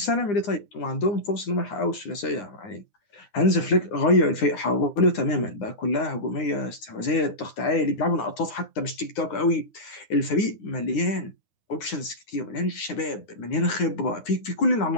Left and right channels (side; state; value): right; late; 9.8 ms